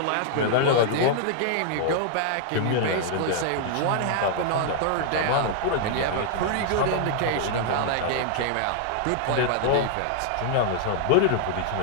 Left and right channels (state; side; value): different; both; correlation -0.01